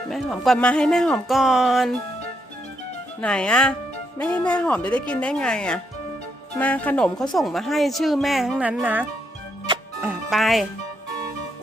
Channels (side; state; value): both; normal; correlation 0.77